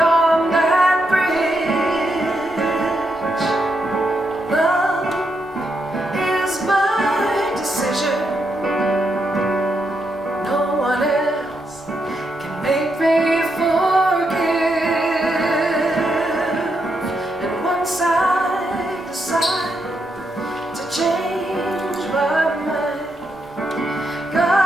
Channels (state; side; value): normal; both; correlation 0.81